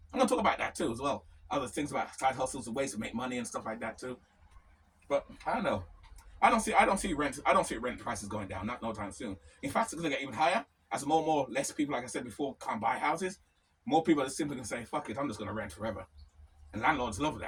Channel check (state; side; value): identical; both; correlation 1.00